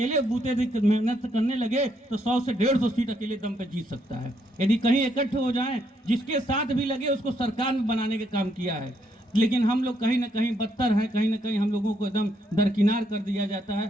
बूते मेहनत करने लगे तो 100 से 150 सीट अकेले दम पे जीत सकता है। यदि कहीं इकट्ठे हो जाएं, जिसके साथ भी लगे उसको सरकार में बनाने का काम किया है। लेकिन हम लोग कहीं ना कहीं बदतर हैं, कहीं ना कहीं हम लोगों को एकदम दरकिनार कर दिया जाता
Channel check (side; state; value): both; normal; correlation 0.74